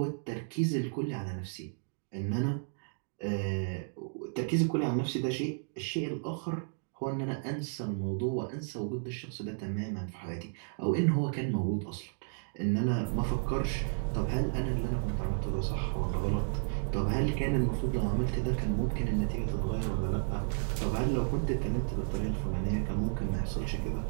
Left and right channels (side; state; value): left; silent; digital silence